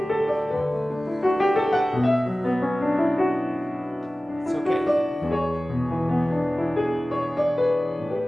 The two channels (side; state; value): both; normal; correlation 0.97